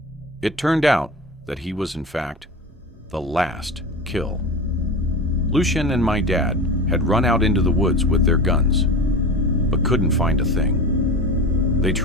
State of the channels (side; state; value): both; normal; correlation 0.29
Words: It turned out that he was in fact the last kill. Lucian and my dad had run out into the woods with their guns, but couldn't find a thing. They